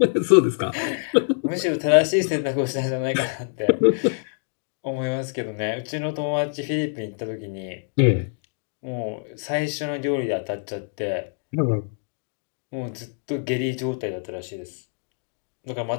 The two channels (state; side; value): silent; right; digital silence